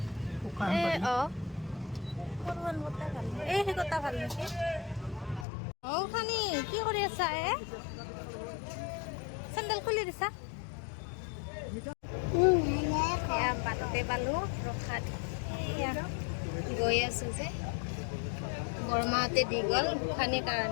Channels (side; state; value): right; drops out; at 5.5 s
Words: খানি কি কৰি আছা চেণ্ডেল খুলি দিছা বাটতে পালো ৰখাত গৈ আছো যে বৰমাহঁতে দি গ'ল গোসানীৰ